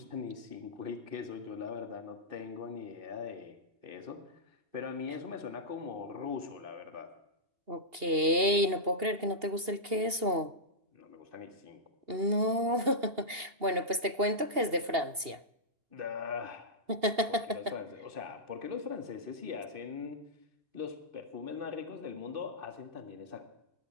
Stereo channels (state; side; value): late; left; 2.8 ms